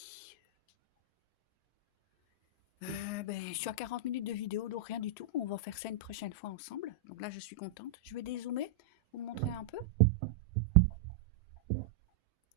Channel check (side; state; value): left; quieter; 5.1 dB